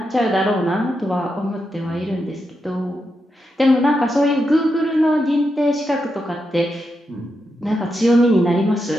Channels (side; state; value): both; normal; correlation 0.85